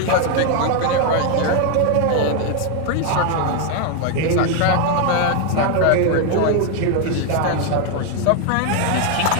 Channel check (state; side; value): different; both; correlation 0.01